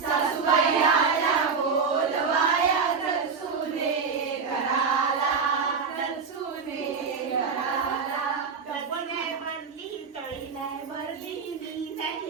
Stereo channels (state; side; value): quieter; left; 5.4 dB